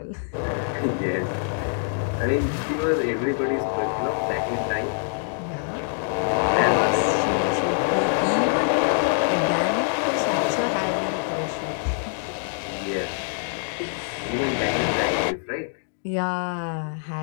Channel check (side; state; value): right; silent; 62 dB below the other